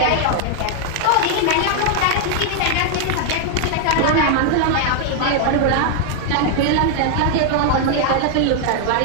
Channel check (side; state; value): both; different; correlation 0.00